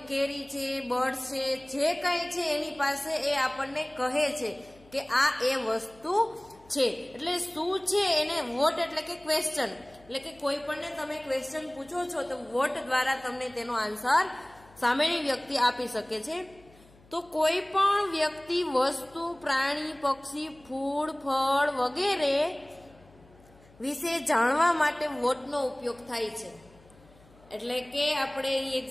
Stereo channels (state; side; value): noise; left; hum, 26 dB below the sound